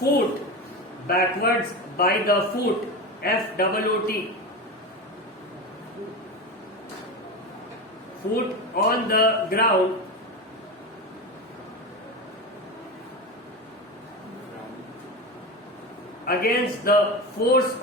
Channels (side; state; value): both; normal; correlation 0.23